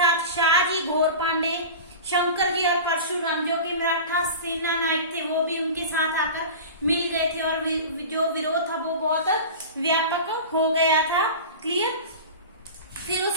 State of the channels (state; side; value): inverted; both; correlation -0.33